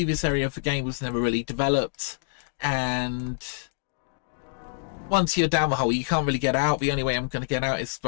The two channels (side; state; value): right; silent; digital silence